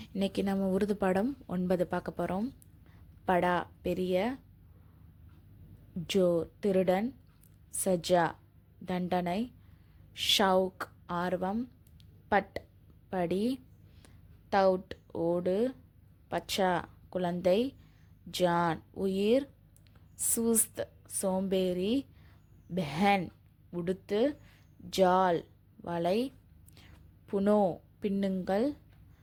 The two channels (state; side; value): identical; both; correlation 1.00